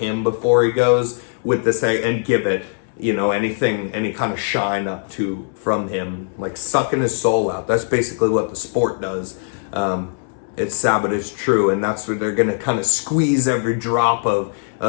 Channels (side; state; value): right; silent; 66 dB below the other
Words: before he goes with this and give it, any kind of shine up from him, like sucking his soul out. That's basically what the sport does. It's sad, but it's true, and that's where they're gonna kind of squeeze every drop of